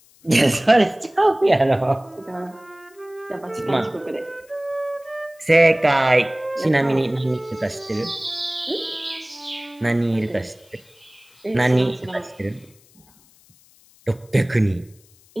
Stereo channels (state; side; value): noise; left; hiss, 29 dB below the sound